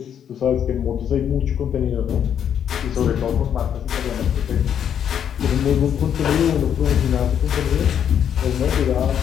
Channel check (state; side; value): quieter; right; 8.9 dB